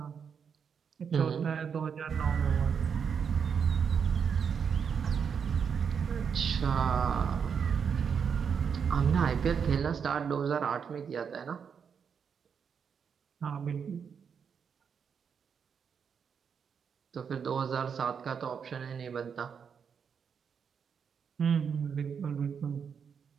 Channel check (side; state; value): left; quieter; 6.8 dB